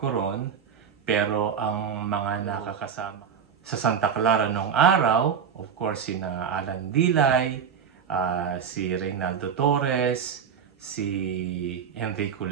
ron, pero ang mga nakakasama sa Santa Clara noong araw, of course, sina Alan Dilay, si Reynaldo Torres, si Enrico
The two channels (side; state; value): left; quieter; 7.2 dB